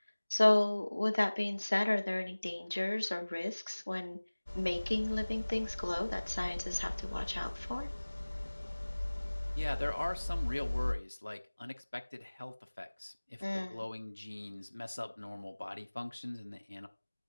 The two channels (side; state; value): both; inverted; correlation -1.00